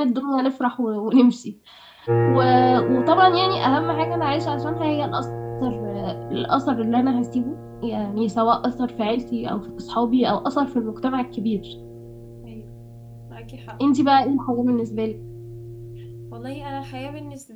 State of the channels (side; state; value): both; identical; correlation 1.00